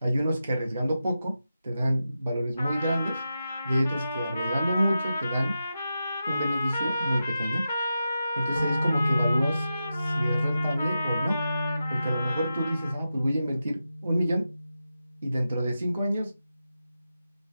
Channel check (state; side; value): inverted; both; correlation -0.90